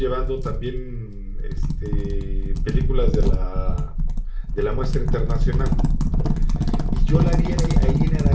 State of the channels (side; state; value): both; identical; correlation 1.00